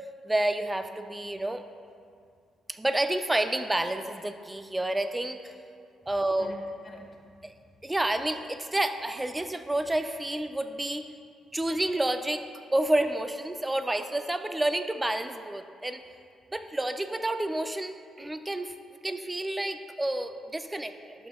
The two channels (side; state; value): both; normal; correlation 0.96